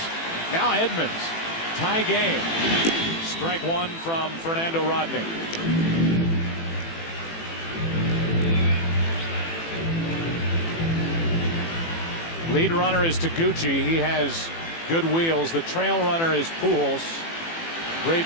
Now Edmonds, tie game. Strike 1 from Fernando Rodney. Lead runner is Taguchi. He has good wheels. The trail runner is Pujols.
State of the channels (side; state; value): right; late; 18 ms